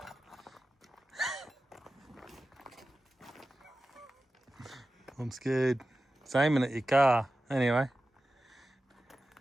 I'm scared. It's aiming at your car. Anyway.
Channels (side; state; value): both; normal; correlation 0.94